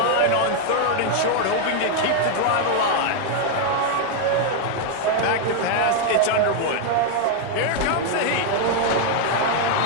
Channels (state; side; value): different; both; correlation 0.00